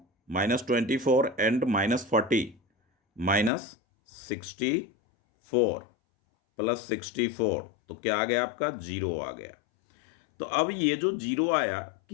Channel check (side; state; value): right; drops out; at 3.5 s